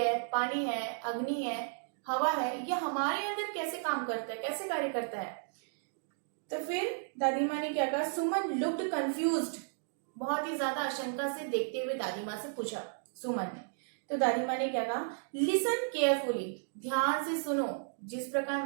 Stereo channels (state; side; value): silent; left; digital silence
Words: पानी है, अग्नि है, हवा है, ये हमारे अंदर कैसे काम करता है, कैसे कार्य करता है। तो फिर दादी माँ ने क्या कहा, सुमन लुक्ड कंफ्यूज्ड, बहुत ही ज्यादा आशंका से देखते हुए दादी माँ से पूछा सुमन ने। तो दादी माँ ने क्या कहा, लिसन केयरफुली, ध्यान से सुनो। जिस प्रकार